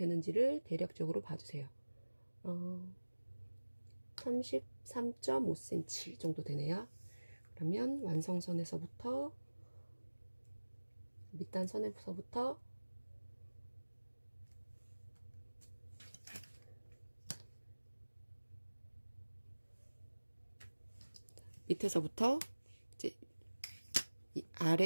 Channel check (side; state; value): both; inverted; correlation -1.00